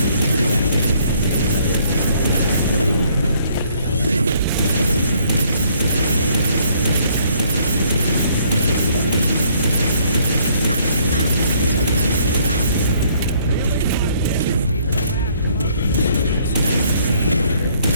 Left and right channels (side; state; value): both; inverted; correlation -0.64